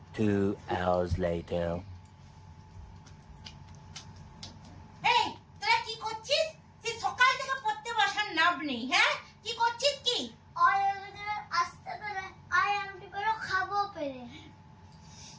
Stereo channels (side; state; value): both; identical; correlation 1.00